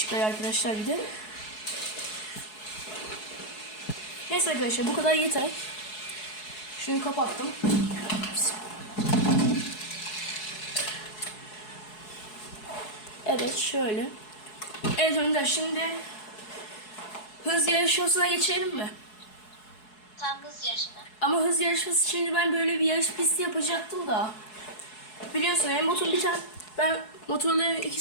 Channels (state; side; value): late; right; 4.7 ms